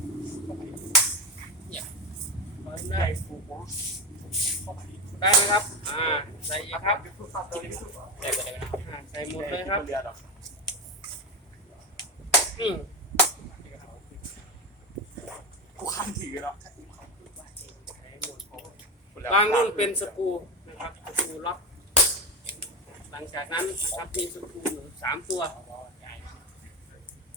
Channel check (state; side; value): normal; both; correlation 0.17